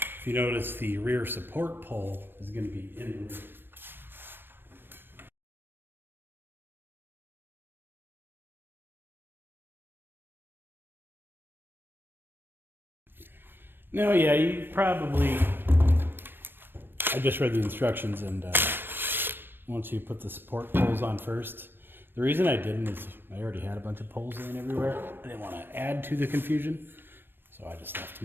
you notice, the rear support pole is going to be in the rear. Now, yeah, you probably, I just read the instructions, and once you put the support poles on first, The reason I didn't is I already had a bunch of poles laying everywhere. I didn't want to add to the confusion, so I just left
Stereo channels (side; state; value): left; late; 0.097 ms